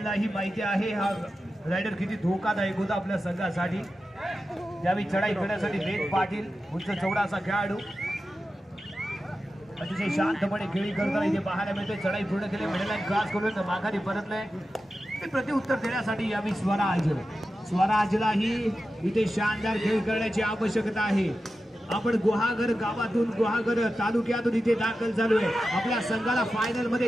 माहिती आहे हा रायडर किती धोकादायक होता आपल्या संघासाठी. ज्यावेळी चढाई करण्यासाठी वेद पाटील उंच चौडा असा खेळाडू अतिशय शांतपणे खेळी करताना इथे पाहायला मिळतोय. चढाई पूर्ण केली, मिडलाईन क्रॉस करून माघारी परतलंय. ते प्रत्युत्तर देण्यासाठी यावी स्वराजलाही इथे शानदार खेळ करण्याची आवश्यकता आहे. आपण गुहागर गावातून गुहागर तालुक्यातून इथे दाखल झालोय. आपल्या संघाला फायनल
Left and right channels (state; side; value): normal; both; correlation 0.92